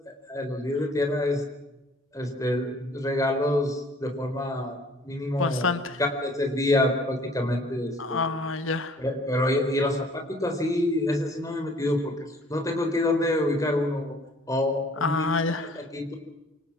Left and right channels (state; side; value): normal; both; correlation 0.55